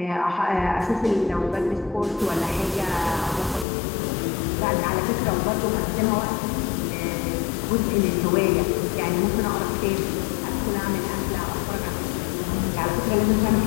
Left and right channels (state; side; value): drops out; right; at 3.7 s